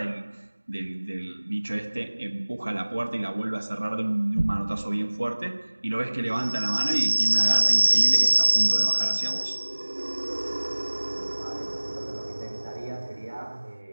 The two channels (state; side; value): inverted; both; correlation -1.00